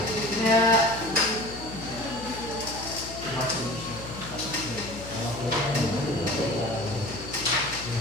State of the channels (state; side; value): noise; left; hum, 12 dB below the sound